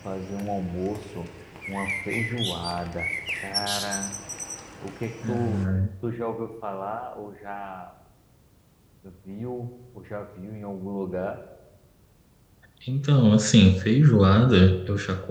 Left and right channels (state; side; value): identical; both; correlation 1.00